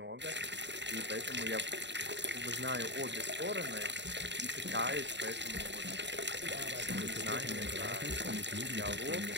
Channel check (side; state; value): left; late; 0.52 ms